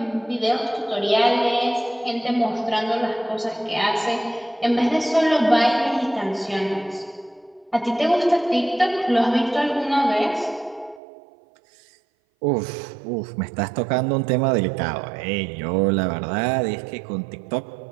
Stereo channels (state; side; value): drops out; left; at 11.0 s